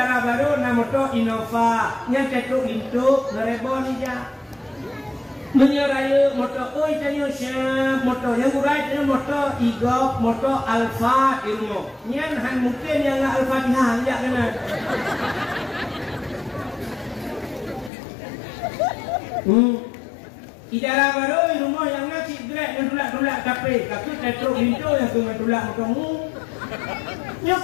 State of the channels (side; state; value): right; drops out; at 17.9 s